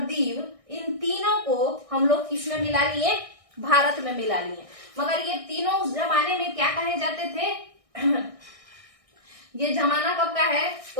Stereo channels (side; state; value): left; late; 1.6 ms